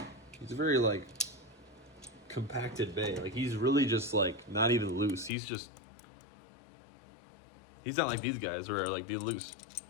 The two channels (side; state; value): right; drops out; at 5.3 s